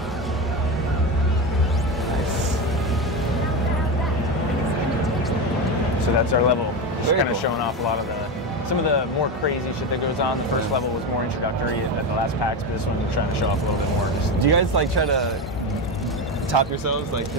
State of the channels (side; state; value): both; normal; correlation 0.18